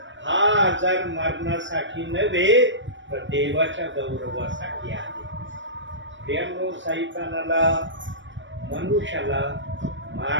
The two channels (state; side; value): late; left; 0.54 ms